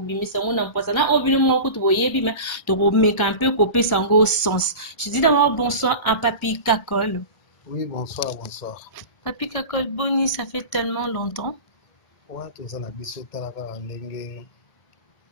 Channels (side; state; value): right; late; 1.4 ms